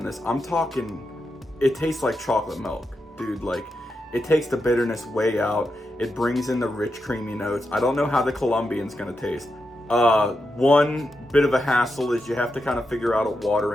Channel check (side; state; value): both; normal; correlation 0.87